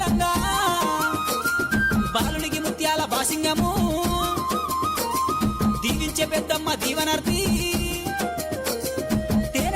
బాలునికి ముత్యాల బాసింగము దీవించే పెద్దమ్మ దీవనార్తి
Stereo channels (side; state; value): both; identical; correlation 1.00